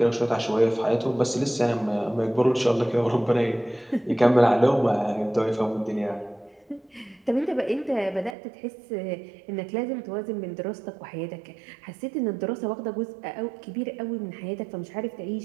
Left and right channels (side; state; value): left; drops out; at 8.3 s